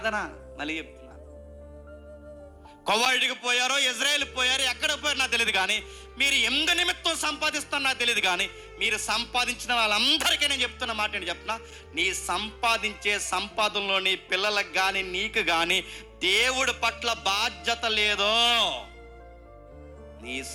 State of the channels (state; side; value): identical; both; correlation 1.00